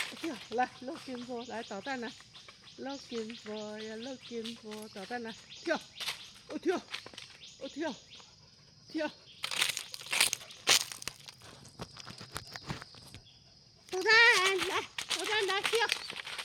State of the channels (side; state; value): both; identical; correlation 1.00